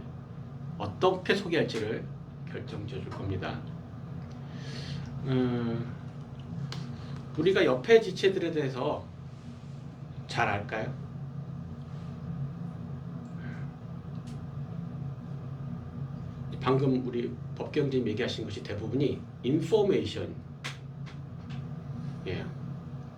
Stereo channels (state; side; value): identical; both; correlation 1.00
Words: 어떻게 소개할지를 결정지어 줄 겁니다. 우리가 옆에 지체들에 대해서 잘 알까요? 방금 우리 법경님 얘기하신 것이 대부분이 인포메이션, 예,